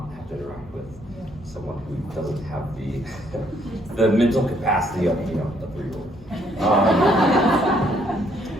have to interact with someone who doesn't have the mental capacity of a 3-year-old.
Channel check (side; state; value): both; normal; correlation 0.68